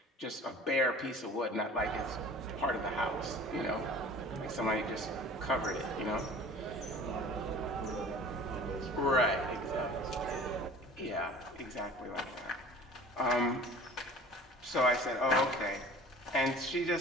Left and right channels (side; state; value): both; normal; correlation 0.44